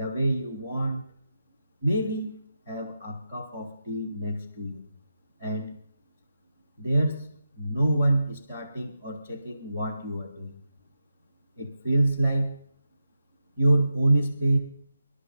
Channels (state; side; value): inverted; both; correlation -0.89